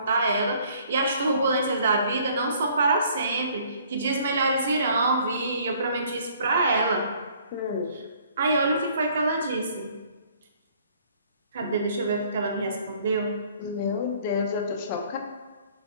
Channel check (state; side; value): inverted; both; correlation -0.59